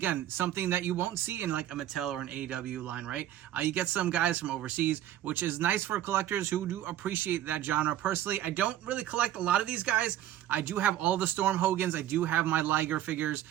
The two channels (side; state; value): left; quieter; 12.5 dB